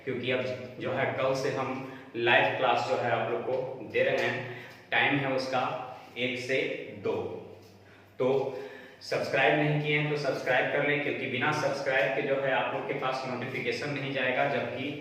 क्योंकि अब जो है कल से हम लाइव क्लास जो है आप लोग को दे रहे हैं। टाइम है उसका 1 से 2। तो सब्सक्राइब नहीं किए हैं तो सब्सक्राइब कर लें, क्योंकि बिना सब्सक्राइब के जो है आप लोग के पास नोटिफिकेशन नहीं जाएगा जबकि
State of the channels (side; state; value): both; identical; correlation 1.00